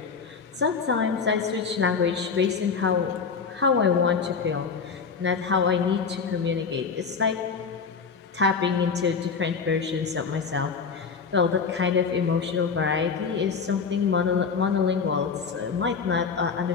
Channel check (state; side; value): quieter; right; 5.5 dB